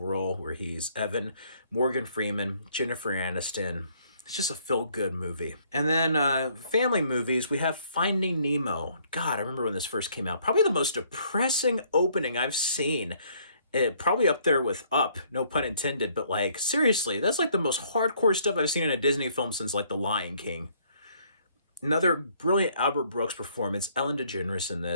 where he's Evan, Morgan Freeman, Jennifer Aniston. It's just a feel-good movie. And then family movies, we have Finding Nemo. God, I remember when this first came out. Probably the most depressing opening I've seen. Probably up there with Up, no pun intended. But like, seriously, that's like the most hardcore stuff I've seen in a Disney film since like The Lion King. Another brilliant Albert Brooks performance, Ellen DeGeneres in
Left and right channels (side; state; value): both; inverted; correlation -0.64